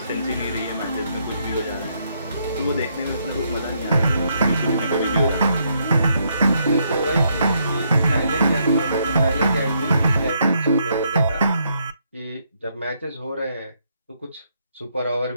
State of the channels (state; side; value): inverted; both; correlation -0.75